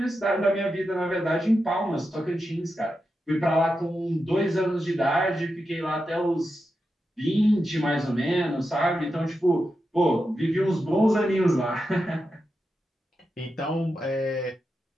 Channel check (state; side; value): normal; both; correlation 0.89